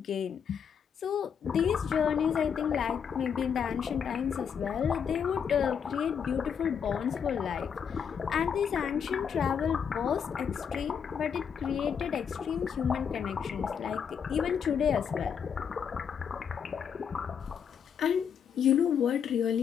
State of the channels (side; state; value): right; quieter; 7.4 dB